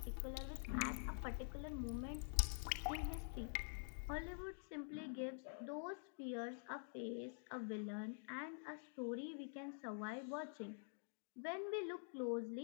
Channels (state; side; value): silent; right; digital silence